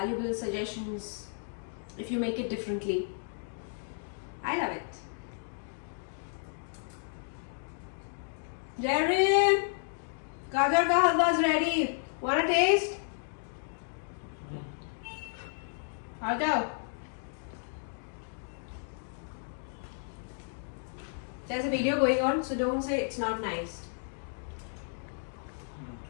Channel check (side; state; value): right; silent; digital silence